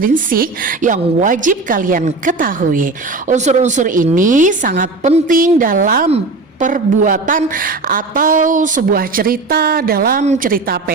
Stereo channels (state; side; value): quieter; left; 3.5 dB